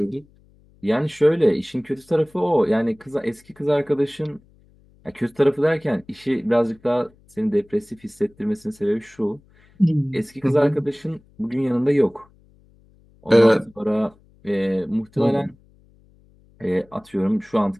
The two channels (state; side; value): noise; left; hum, 30 dB below the sound